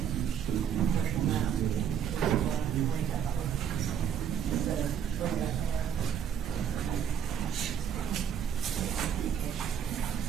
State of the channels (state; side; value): quieter; left; 8.5 dB